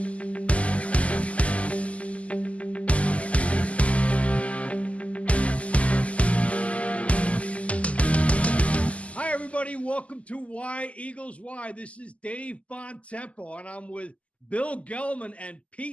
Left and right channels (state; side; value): late; right; 0.065 ms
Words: Hi, everybody. Welcome to Why Eagles Why. This is Dave Bontempo, and I'm with Bill Gelman and